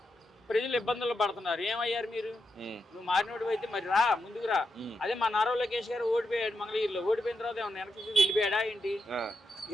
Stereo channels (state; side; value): normal; both; correlation 0.85